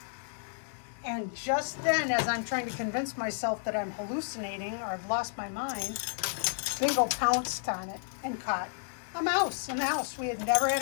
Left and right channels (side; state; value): right; silent; 57 dB below the other